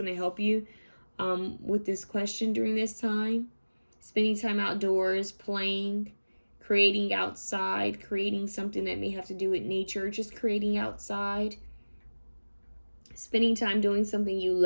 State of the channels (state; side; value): inverted; both; correlation -1.00